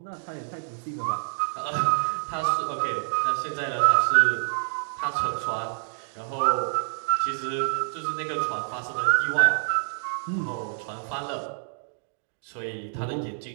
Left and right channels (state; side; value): silent; left; digital silence